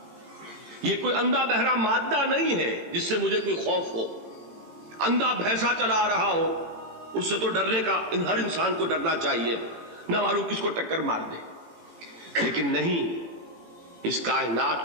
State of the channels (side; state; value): left; late; 18 ms